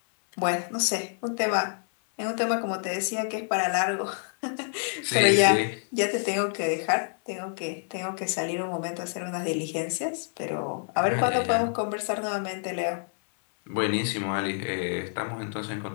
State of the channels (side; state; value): right; silent; 57 dB below the other